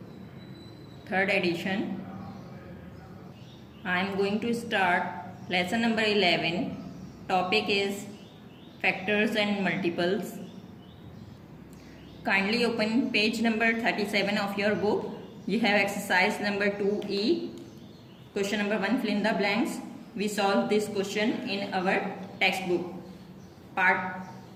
3rd edition. I am going to start lesson number 11. Topic is factors and multiples. Kindly open page number 37 of your book. You have exercise number 2E. Question number 1, fill in the blanks. We solve this question in our textbook. Part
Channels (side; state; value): both; identical; correlation 1.00